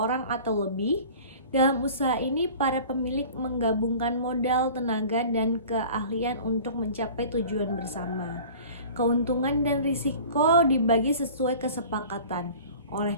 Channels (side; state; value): both; inverted; correlation -0.42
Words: atau lebih. Dalam usaha ini, para pemilik menggabungkan modal, tenaga, dan keahlian untuk mencapai tujuan bersama. Keuntungan dan risiko dibagi sesuai kesepakatan. Oleh